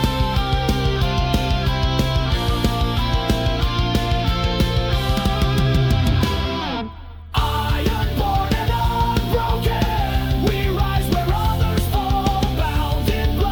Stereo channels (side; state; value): both; identical; correlation 1.00